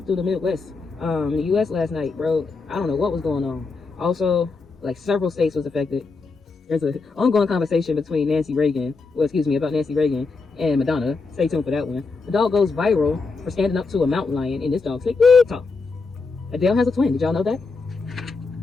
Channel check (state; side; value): quieter; right; 4.2 dB